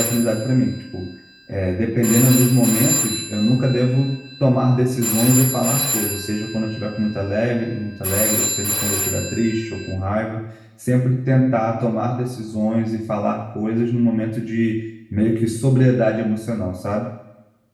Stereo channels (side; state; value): both; identical; correlation 1.00